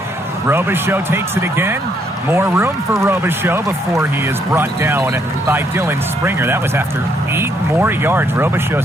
Robichaux takes it again. More room for Robichaux before he is brought down by Dylan Springer. That was after 8 more yards.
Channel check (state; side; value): normal; both; correlation 0.72